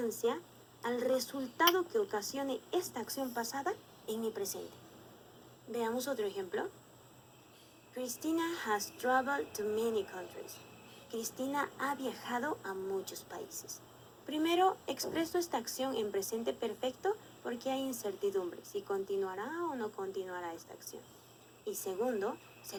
al resultado que ocasione esta acción pasada en mi presente. Veamos otro ejemplo. Christina has traveled to many countries. Cristina ha viajado a muchos países. Primero, expreso esta acción en presente perfecto porque hay incertidumbre si continuará o no continuará esta acción. Y segundo,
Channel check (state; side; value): identical; both; correlation 1.00